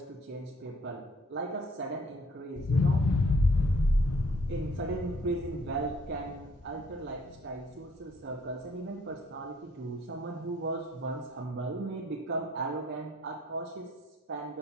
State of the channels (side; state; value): both; normal; correlation 0.62